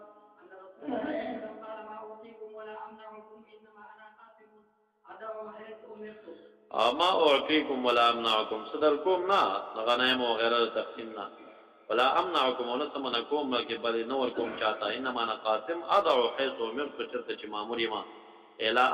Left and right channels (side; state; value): both; identical; correlation 1.00